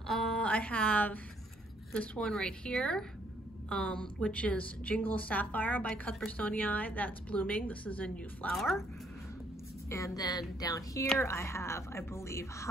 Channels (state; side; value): normal; both; correlation 0.68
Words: I have this one right here, which is Jingle Sapphire by Cuthbertsonii. That's blooming. This is a new flower. And then down here I have, I believe,